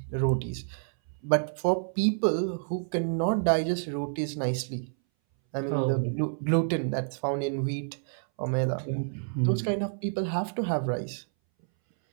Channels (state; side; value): silent; left; 59 dB below the other